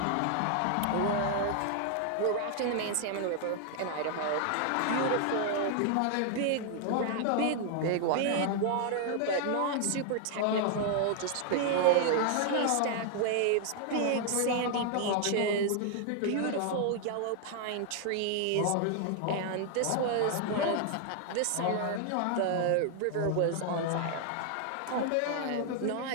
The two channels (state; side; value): different; both; correlation 0.00